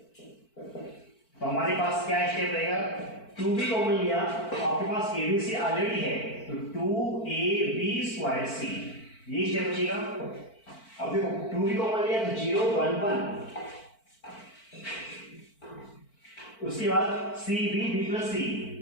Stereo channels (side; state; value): right; late; 4.5 ms